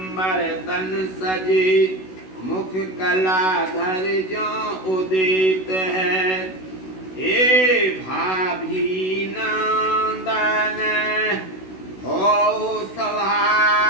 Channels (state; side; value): late; right; 16 ms